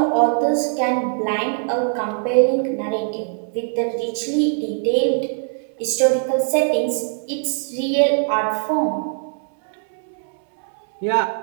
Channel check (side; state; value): left; silent; 65 dB below the other